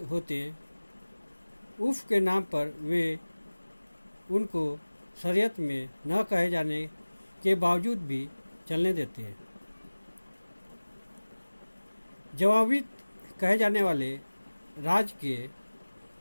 होते उफ के नाम पर वे उनको शरीयत में न कहे जाने के बावजूद भी चलने देते हैं। जवाबी कहे जाने वाले राज्य के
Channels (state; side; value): inverted; both; correlation -1.00